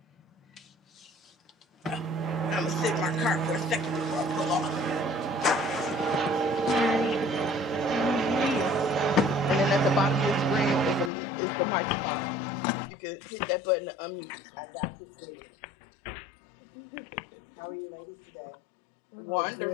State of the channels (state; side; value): drops out; right; at 11.1 s